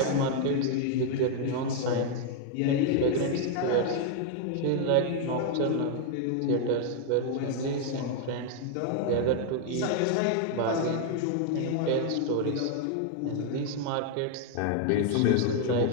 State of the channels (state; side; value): different; both; correlation 0.00